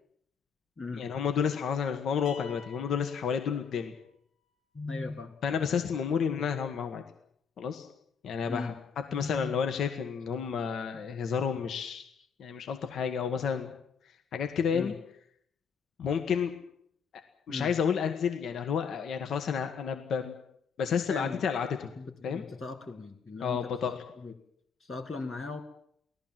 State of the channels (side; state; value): right; quieter; 6.4 dB